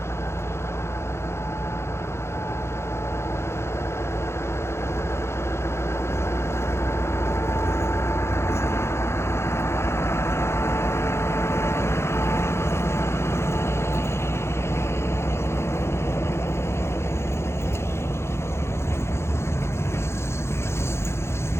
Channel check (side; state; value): right; late; 0.13 ms